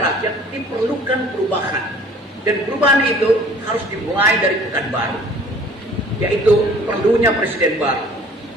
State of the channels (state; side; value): normal; both; correlation 0.51